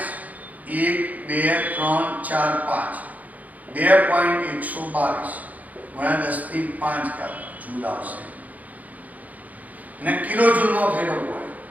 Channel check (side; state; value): left; late; 0.077 ms